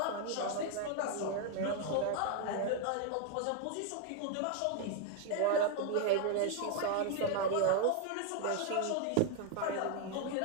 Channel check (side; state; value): both; different; correlation 0.00